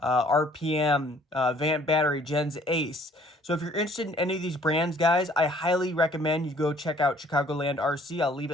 RPM, Vant Battery, Gens Ace. So if you're interested in any of these brands, guys, I highly recommend you go check out Chicagoland RC. I'll leave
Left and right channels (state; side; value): normal; both; correlation 0.58